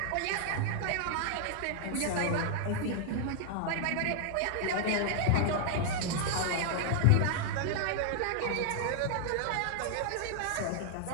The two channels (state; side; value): different; both; correlation 0.00